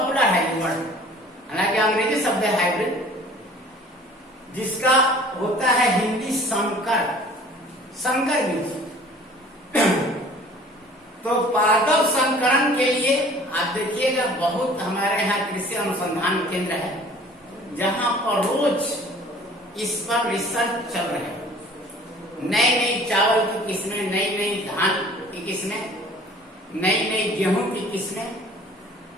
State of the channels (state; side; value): normal; both; correlation 0.49